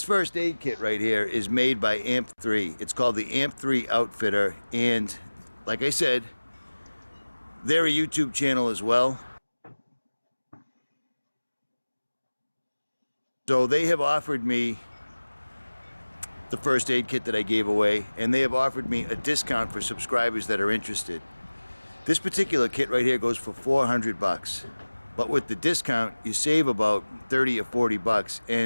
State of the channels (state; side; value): inverted; both; correlation -1.00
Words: first aid kit right here is made by AMP3. It's called the AMP3 Outfitter, and like I said, they're a YouTube channel as well. So they have offered me the first aid kit that I gave away, and they have offered me a discount for subscribers that are interested. This particular kit right here goes for 400 bucks, but with the discount you save about 30 or 40 bucks,